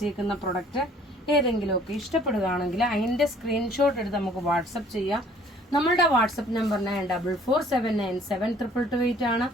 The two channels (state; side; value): normal; both; correlation 0.56